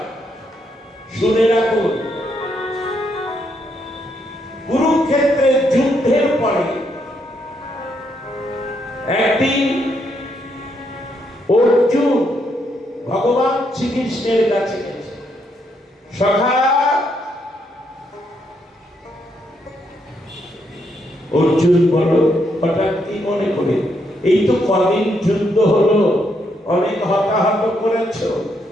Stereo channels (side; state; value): both; normal; correlation 0.76